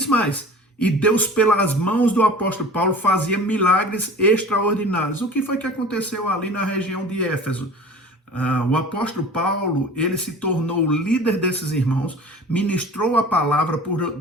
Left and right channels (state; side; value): normal; both; correlation 0.40